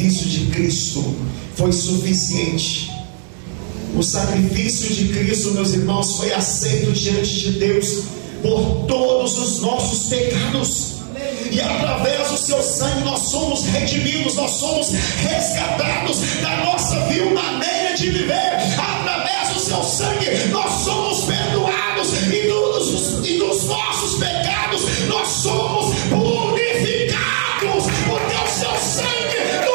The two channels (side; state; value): left; silent; digital silence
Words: de Cristo foi suficiente. O sacrifício de Cristo, meus irmãos, foi aceito diante de Deus por todos os nossos pecados. E através do seu sangue nós somos redimidos, nós somos resgatados da nossa vil maneira de viver. Através do seu sangue nós somos perdoados, e dos nossos pecados nós somos purificados, porque o seu sangue